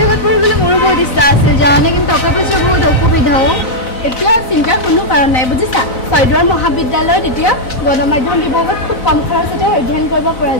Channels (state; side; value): late; right; 4.0 ms